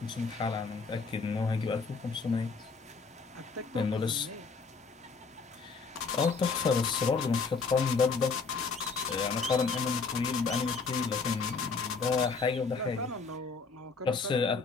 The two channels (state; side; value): quieter; right; 4.6 dB